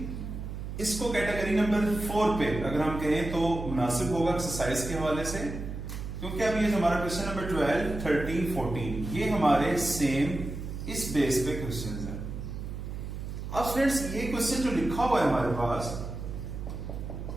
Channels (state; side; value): noise; right; hum, 7 dB below the sound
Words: इसको कैटेगरी नंबर 4 पे अगर हम कहें तो मुनासिब होगा एक्सरसाइज के हवाले से, क्योंकि अब ये हमारा क्वेश्चन नंबर 12, 13, 14 ये हमारे सेम इस बेस पे क्वेश्चन है। अब स्टूडेंट्स ये क्वेश्चन जो लिखा हुआ है हमारे पास,